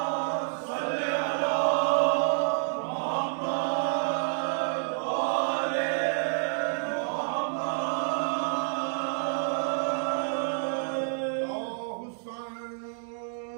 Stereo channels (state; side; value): silent; left; digital silence